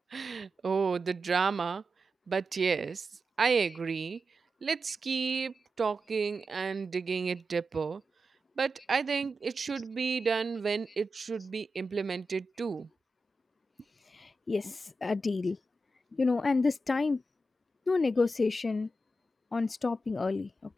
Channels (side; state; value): both; normal; correlation 0.89